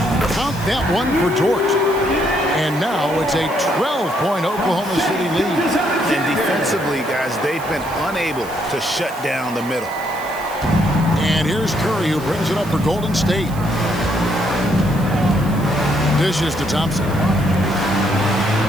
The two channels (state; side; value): noise; right; hiss, 18 dB below the sound